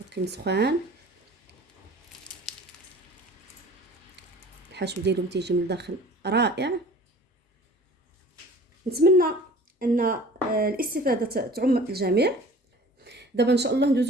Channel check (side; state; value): both; normal; correlation 0.46